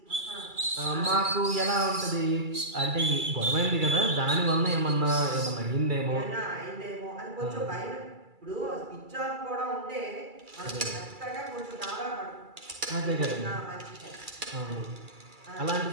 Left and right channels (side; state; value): left; late; 2.3 ms